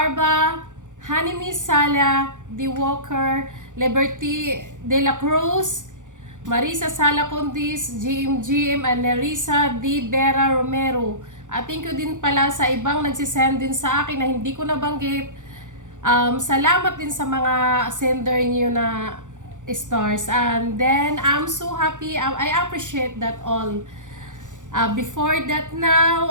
Hanimi Sala, D. Walker, Liberty De La Cruz, Marisa Sala Condis, GM, and Nerissa D. Vera Romero. At thank you din pala sa ibang nagsisend din sa akin na hindi ko nabanggit. Salamat din sa mga sender niyo na stars. And then, I'm so happy. I appreciate that all. Before that now,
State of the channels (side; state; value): left; late; 0.86 ms